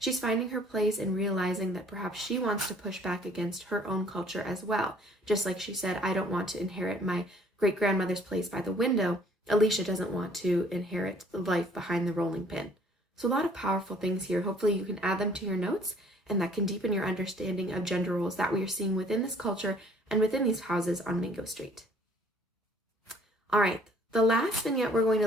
finding her place and realizing that perhaps she wants to push back against her own culture as well. Just like she said, I don't want to inherit my great-grandmother's place by the window. Alicia doesn't want to inherit the life behind the rolling pin. So a lot of powerful things here. Hopefully you can add them to your notes, and that can deepen your understanding of gender roles that we are seeing within this culture and within these houses on Mango Street. All right, the last vignette we're going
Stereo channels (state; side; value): normal; both; correlation 0.58